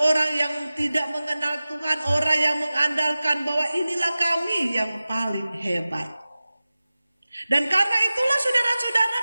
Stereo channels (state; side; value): inverted; both; correlation -0.97